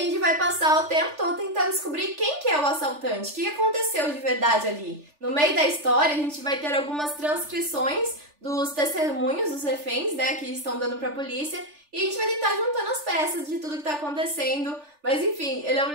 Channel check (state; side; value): late; left; 3.4 ms